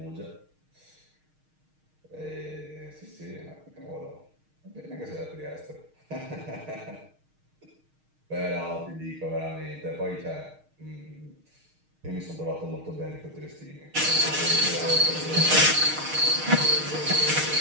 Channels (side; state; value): left; late; 6.4 ms